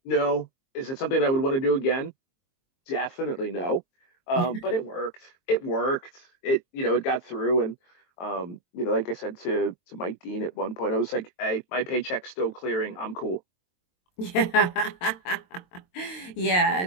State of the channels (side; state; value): right; late; 22 ms